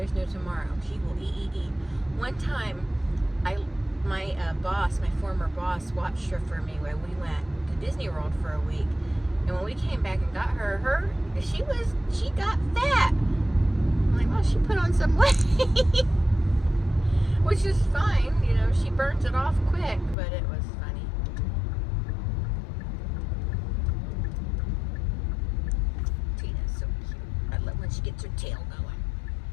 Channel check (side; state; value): right; drops out; at 20.2 s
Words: no tomorrow. She will eat. One time, my former boss, watched her for me when we went to Disney World for a week. And when we came back and got her, she got fat. I'm like, well, she put on some weight, which is fine. You know, she burns it off quick, but it was funny. Tina's so cute. I love when she gets her tail going.